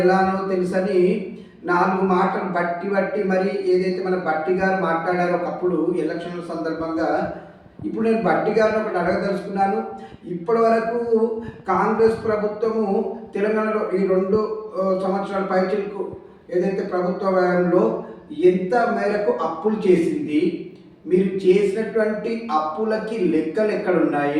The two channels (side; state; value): both; identical; correlation 1.00